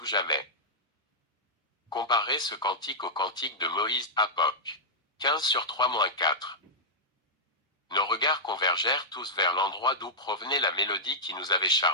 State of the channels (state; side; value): normal; both; correlation -0.08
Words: jamais. Comparez ce cantique au cantique de Moïse, Apoc. 15/3-4. Nos regards convergèrent tous vers l'endroit d'où provenait la mélodie qui nous avait